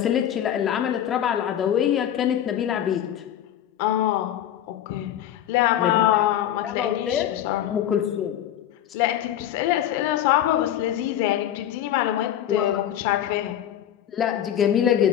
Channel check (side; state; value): right; quieter; 11.0 dB